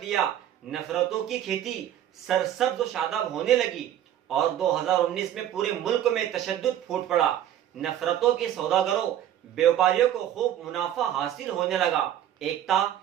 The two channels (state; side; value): quieter; left; 11.2 dB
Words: لیا، نفرتوں کی کھیتی سرسبز و شاداب ہونے لگی اور 2019 میں پورے ملک میں تشدد پھوٹ پڑا۔ نفرتوں کے سوداگروں، بیوپاریوں کو خوب منافع حاصل ہونے لگا۔ ایکتا،